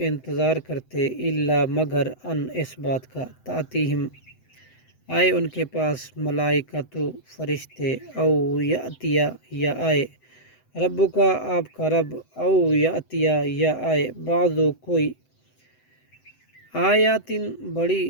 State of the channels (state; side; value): late; right; 7.9 ms